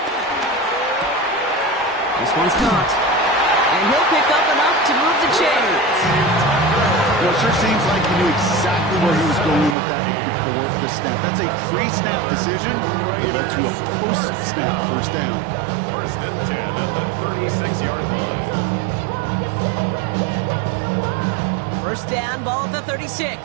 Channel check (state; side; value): drops out; left; at 9.8 s